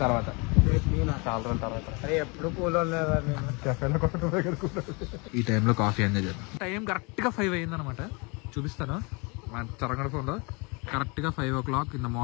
తర్వాత, చాలా రోజుల తర్వాత. ఎప్పుడు కూలో ఈ టైంలో కాఫీ ఎంజాయ్ చేద్దాం. టైం కరెక్ట్ గా 5 అయింది అనమాట. చూపిస్తాను మా చరంగడ ఫోన్ లో. కరెక్ట్ గా 5 o'clock in the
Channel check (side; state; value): right; quieter; 29.9 dB